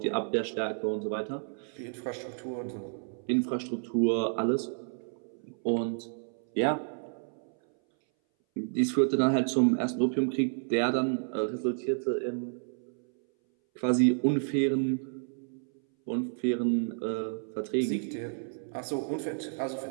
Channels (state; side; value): silent; left; 57 dB below the other